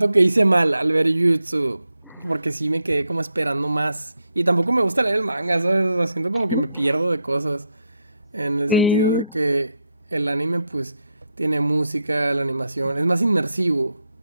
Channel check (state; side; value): inverted; both; correlation -0.82